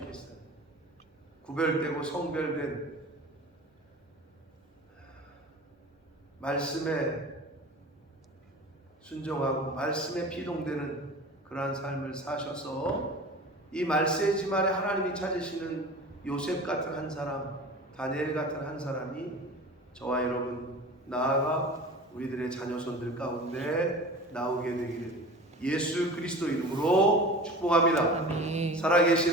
구별되고 성별된 말씀에 순종하고 말씀에 피동되는 그러한 삶을 사셔서 이 말세지 말에 하나님이 찾으시는 요셉 같은 한 사람, 다니엘 같은 한 사람이 저와 여러분 나아가 우리들의 자녀손들 가운데 나오게 되기를 예수 그리스도 이름으로 축복합니다. 아멘.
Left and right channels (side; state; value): both; normal; correlation 0.37